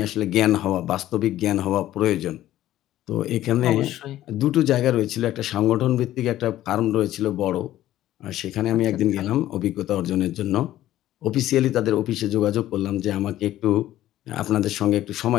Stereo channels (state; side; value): quieter; right; 13.8 dB